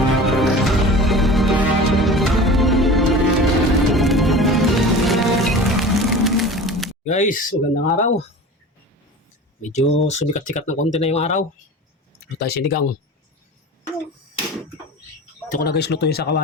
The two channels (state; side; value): normal; both; correlation 0.36